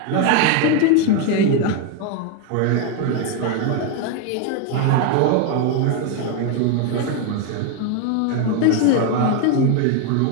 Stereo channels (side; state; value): both; different; correlation 0.01